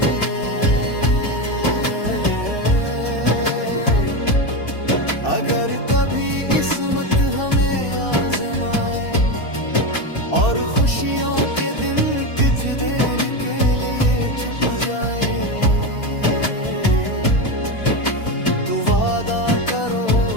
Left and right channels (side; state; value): right; late; 2.7 ms